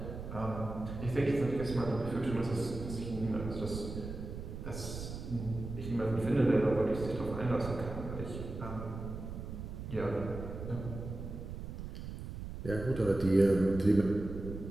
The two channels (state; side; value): noise; right; rumble, 8 dB below the sound